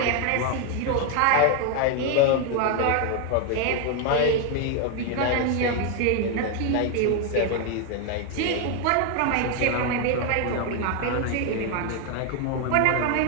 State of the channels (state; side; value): different; both; correlation 0.01